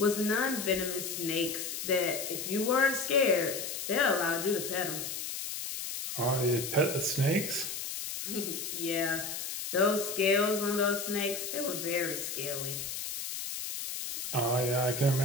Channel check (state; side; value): noise; left; hiss, 5 dB below the sound